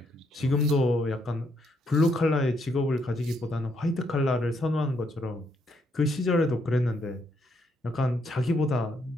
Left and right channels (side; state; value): both; normal; correlation 0.74